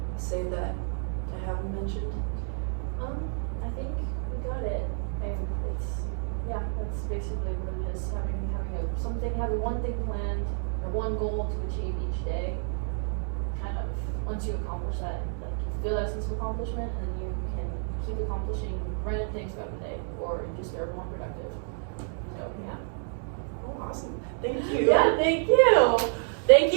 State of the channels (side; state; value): left; silent; 58 dB below the other